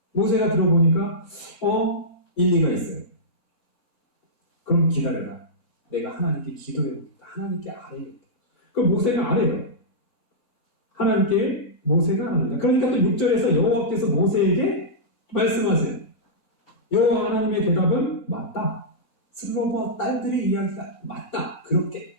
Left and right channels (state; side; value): normal; both; correlation -0.14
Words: 모세가 들어보니까 일리가 있어요. 그럼 기다려라. 내가 하나님께 기도해보겠다. 하나님께 아뢰겠다. 그럼 모세가 아뢰요. 하나님께 모세가 아뢰다. 그러니까 또 6절에서 여호와께서 모세에게 말씀하세요. 여호와 하나님의 대답은 맞다. 슬로보아 딸들의 이야기가 맞다. 그렇게